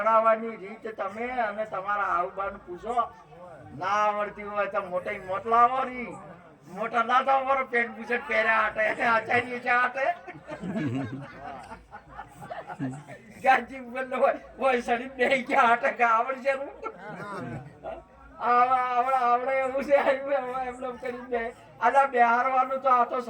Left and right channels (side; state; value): both; identical; correlation 1.00